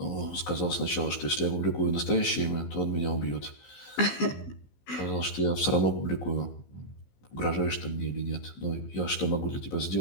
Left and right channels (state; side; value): late; right; 15 ms